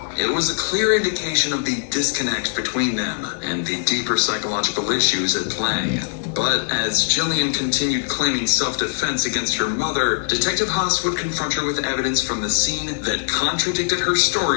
It was a clear indication of the disconnect between them and the deeper psychological issues at play. But as Jillian continued claiming self-defense against her mother, Detective Haas would confront her with evidence from the scene that contradicted her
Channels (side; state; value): right; silent; 65 dB below the other